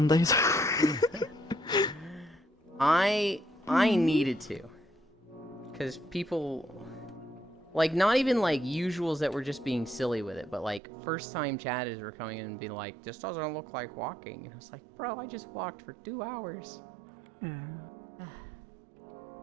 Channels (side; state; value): left; drops out; at 10.8 s